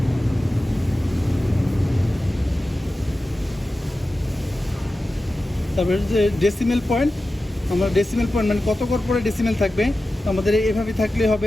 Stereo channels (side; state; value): both; normal; correlation 0.94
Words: তারপরে যে ডেসিমেল পয়েন্ট, আমরা ডেসিমেল পয়েন্ট মানে কত ঘর পরে ডেসিমেল থাকবে, তো আমাদের এভাবে থাকলে